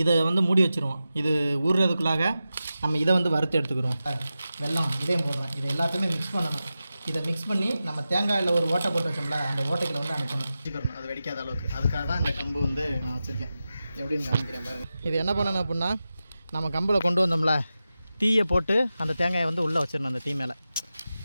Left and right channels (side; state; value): both; inverted; correlation -0.93